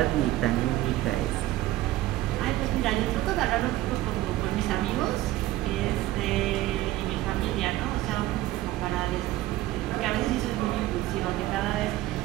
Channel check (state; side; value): quieter; left; 16.0 dB